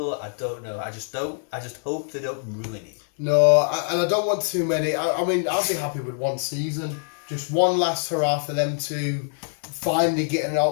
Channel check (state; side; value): silent; right; 62 dB below the other